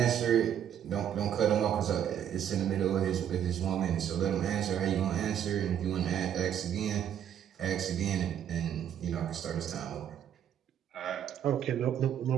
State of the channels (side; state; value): left; quieter; 9.7 dB